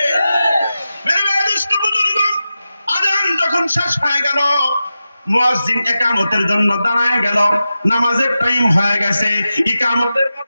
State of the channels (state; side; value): inverted; both; correlation -0.92